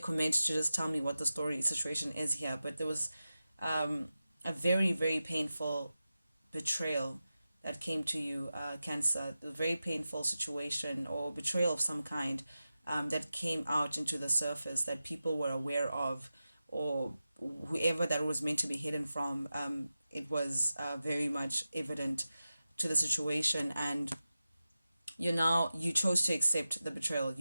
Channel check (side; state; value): both; inverted; correlation -0.92